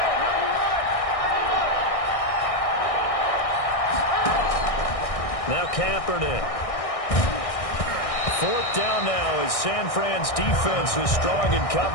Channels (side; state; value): right; late; 1.6 ms